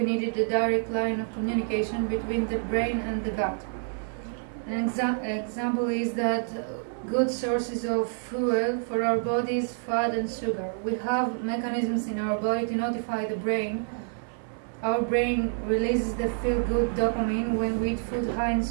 needed a direct line of communication between the brain and the gut. An example is that good sources of fuel for our body is fat and sugar. We have mechanisms in our body to notify the brain. Our brain releases the feel-good dopamine when we eat food high in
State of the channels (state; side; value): silent; left; 58 dB below the other